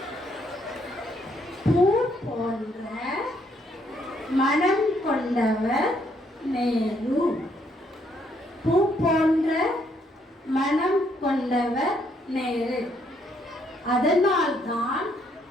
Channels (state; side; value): normal; both; correlation 0.71